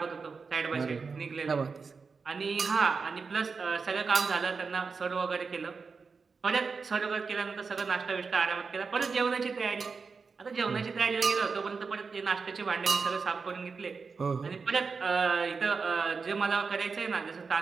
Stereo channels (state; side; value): quieter; left; 4.9 dB